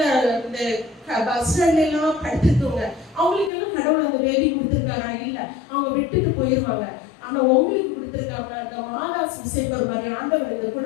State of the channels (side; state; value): right; drops out; at 3.5 s